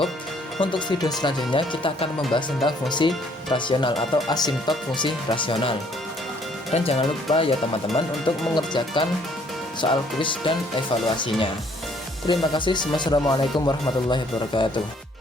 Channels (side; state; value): both; normal; correlation 0.63